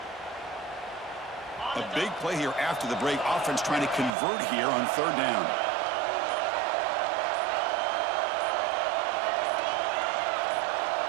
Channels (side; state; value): left; drops out; at 4.1 s